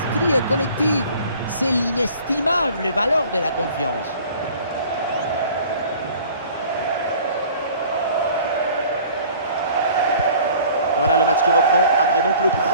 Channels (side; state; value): both; inverted; correlation -0.49